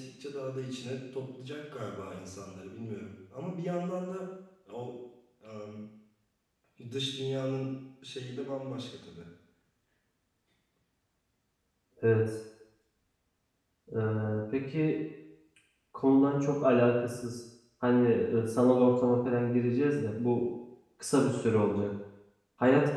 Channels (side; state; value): both; identical; correlation 1.00